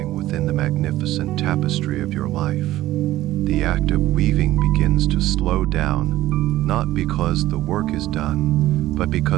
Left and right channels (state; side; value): quieter; left; 15.3 dB